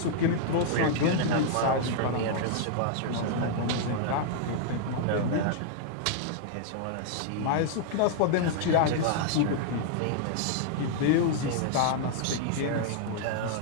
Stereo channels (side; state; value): both; different; correlation -0.01